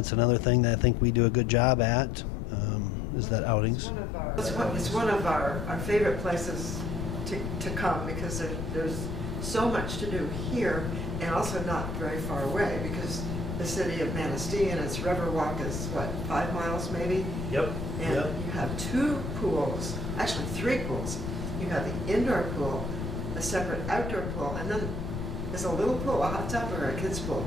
another thing that I think we do a good job at, is that outings. It's one of our favorite places to come, because there's so much to do here, and also not very far away, because the city of Manistee and its Riverwalk is 5 miles maybe? Yep. And you have 2 pools, actually 3 pools. You have the indoor pool, a separate outdoor pool, and then there's a little pool, a hot tub, or a kid's pool?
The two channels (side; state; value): left; noise; rumble, 5 dB below the sound